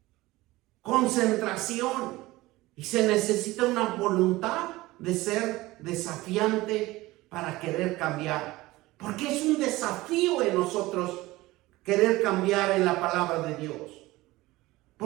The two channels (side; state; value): left; quieter; 19.1 dB